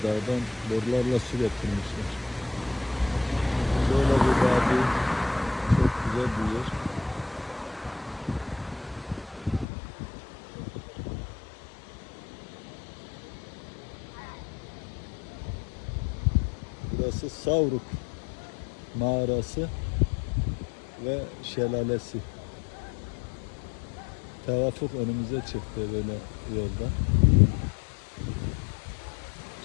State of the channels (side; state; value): right; drops out; at 9.7 s